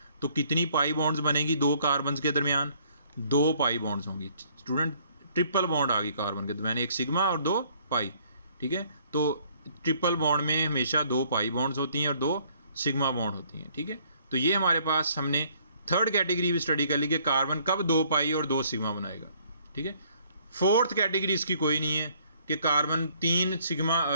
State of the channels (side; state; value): both; inverted; correlation -0.62